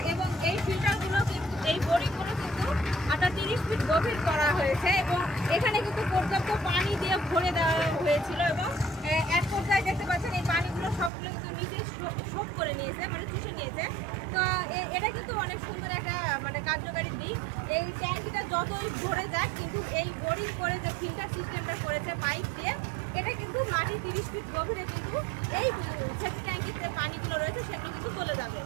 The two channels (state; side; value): drops out; left; at 11.1 s